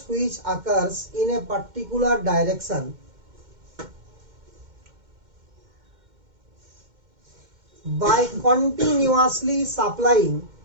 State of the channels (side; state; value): left; late; 2.1 ms